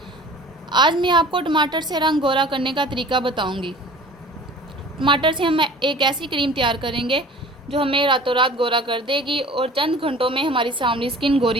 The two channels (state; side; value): normal; both; correlation 0.44